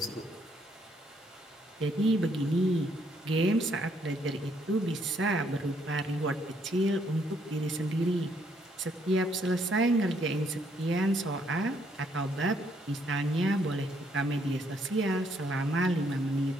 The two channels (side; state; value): both; normal; correlation 0.70